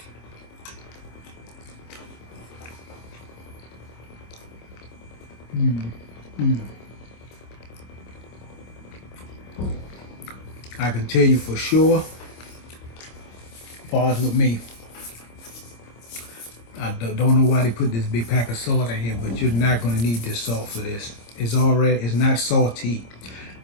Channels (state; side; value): late; right; 26 ms